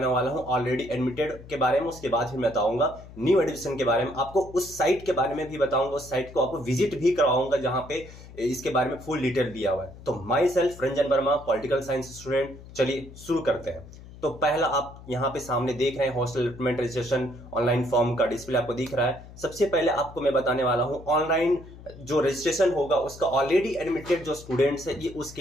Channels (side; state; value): left; noise; hum, 17 dB below the sound